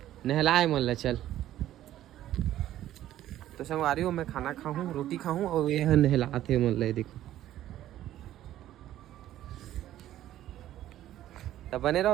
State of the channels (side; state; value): left; quieter; 13.0 dB